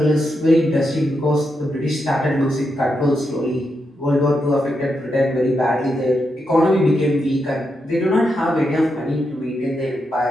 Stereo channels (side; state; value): both; normal; correlation 0.84